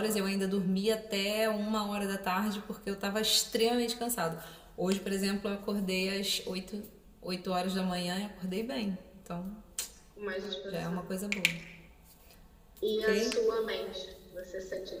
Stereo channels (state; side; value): identical; both; correlation 1.00